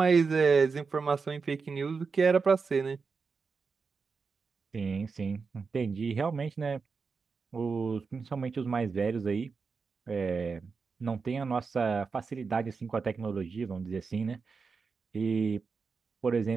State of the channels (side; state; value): left; quieter; 5.0 dB